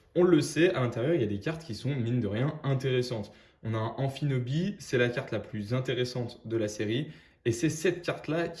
on le sait, à l'intérieur, il y a des cartes qui sont, mine de rien, intéressantes. On a un Amphinobi, c'est la carte la plus intéressante de la série. Et c'est cette carte-là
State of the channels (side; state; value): both; identical; correlation 1.00